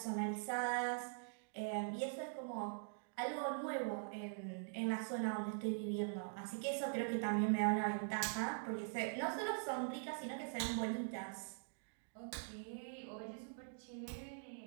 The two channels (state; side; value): silent; left; digital silence